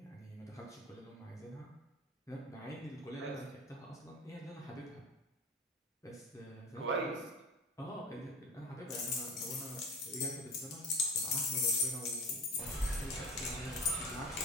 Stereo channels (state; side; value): normal; both; correlation 0.33